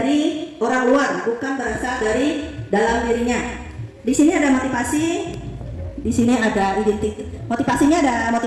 orang luar, bukan berasal dari dalam dirinya. Di sini ada motivasi, di sini ada identitas. Motivasinya ada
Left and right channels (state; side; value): identical; both; correlation 1.00